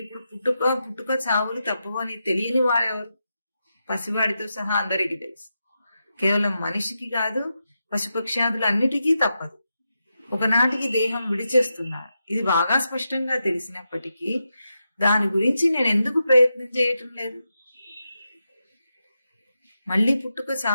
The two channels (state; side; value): inverted; both; correlation -0.87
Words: పుట్టుక చావులు తప్పవని తెలియని వాడెవరు? పసివాడితో సహా అందరికీ తెలుసు. కేవలం మనిషికి కాదు, పశుపక్ష్యాదులు అన్నిటికీ తప్పదు. ఒకనాటికి దేహం విడిచేస్తున్నాడు. ఇది బాగా స్పష్టంగా తెలిసినప్పటికీ దాని గురించి నేను ఎందుకు ప్రయత్నం చేయటం లేదు? మళ్ళీ పుట్టుక